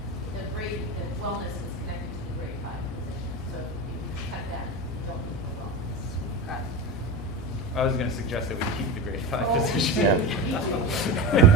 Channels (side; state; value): both; normal; correlation 0.23